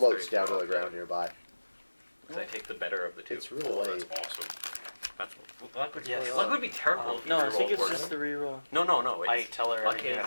down to the ground nearby. I take the better of the two. It's really Oh, late. that's awesome. That's luck would, Yes. luck would be terrible. if No, you I think roll it's worse. just the reroll. No. It's, I tell her luck everything that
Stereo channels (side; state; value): both; inverted; correlation -1.00